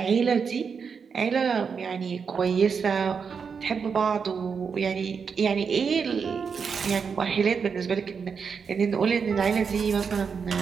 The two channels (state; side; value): quieter; left; 6.0 dB